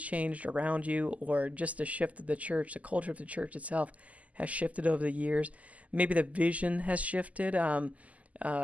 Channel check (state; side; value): late; left; 0.072 ms